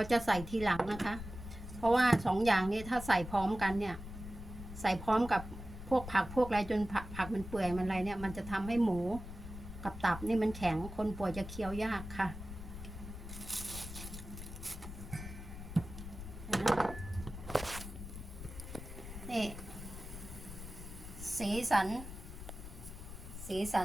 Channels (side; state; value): left; noise; rumble, 10 dB below the sound